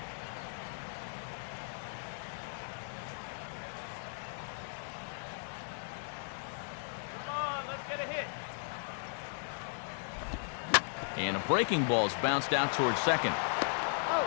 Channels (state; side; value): silent; right; digital silence